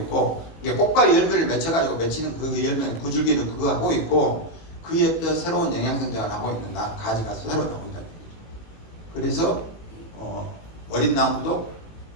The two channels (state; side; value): late; right; 19 ms